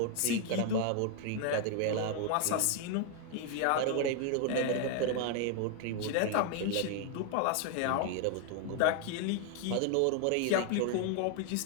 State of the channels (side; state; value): both; different; correlation 0.00